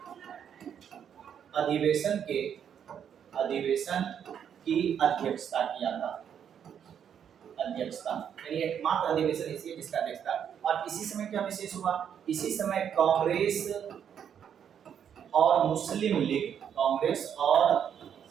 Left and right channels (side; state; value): left; quieter; 8.5 dB